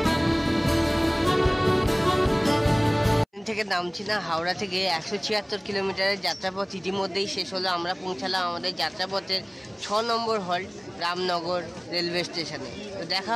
থেকে নামছি না। হাওড়া থেকে 176 কিলোমিটারের যাত্রাপথ ইতিমধ্যেই শেষ হলো। আমরা পৌঁছালাম আমাদের যাত্রাপথের 6 নম্বর হল্ট রামনগর রেলওয়ে স্টেশনে। তো দেখা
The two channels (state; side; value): identical; both; correlation 1.00